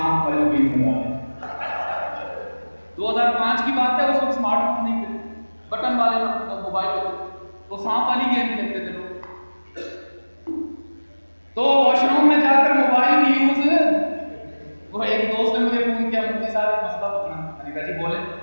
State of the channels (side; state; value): both; inverted; correlation -1.00